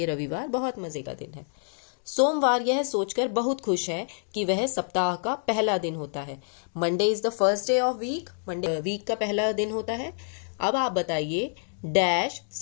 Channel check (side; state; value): right; silent; digital silence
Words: रविवार बहुत मजे का दिन है। सोमवार यह सोचकर बहुत खुश है कि वह सप्ताह का पहला दिन होता है। Monday is the first day of week. Monday week का पहला दिन होता है। अब आप बताइए डैश